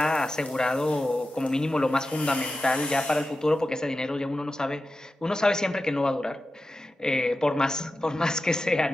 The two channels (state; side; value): normal; both; correlation 0.93